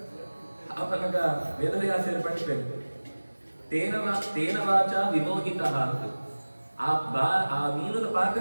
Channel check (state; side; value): inverted; both; correlation -1.00